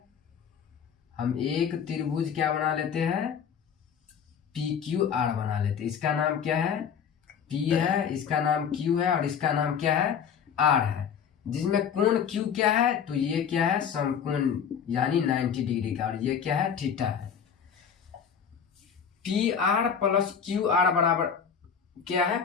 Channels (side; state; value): right; quieter; 7.4 dB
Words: हम एक त्रिभुज क्या बना लेते हैं PQR बना लेते हैं। इसका नाम क्या है P है, इसका नाम Q है और इसका नाम क्या है R है, जिसमें कोण Q क्या है, तो ये क्या है समकोण यानी 90 डिग्री का, और ये क्या है थीटा है। PR + QR बराबर क्या है